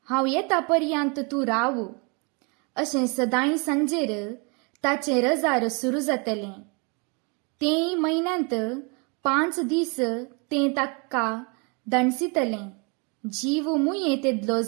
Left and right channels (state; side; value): quieter; left; 32.8 dB